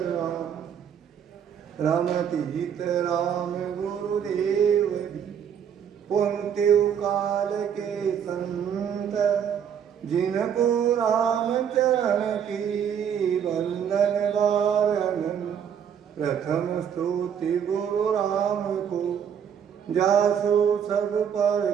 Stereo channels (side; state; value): left; quieter; 8.2 dB